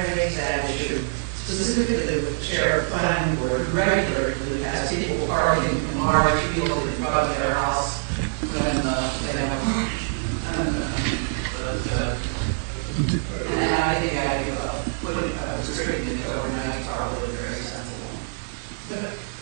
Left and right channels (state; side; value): silent; left; digital silence